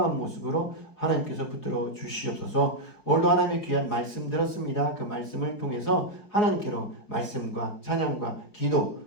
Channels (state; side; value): late; right; 4.8 ms